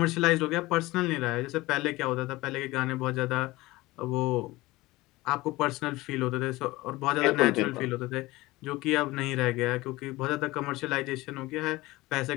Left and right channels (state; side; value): quieter; right; 19.9 dB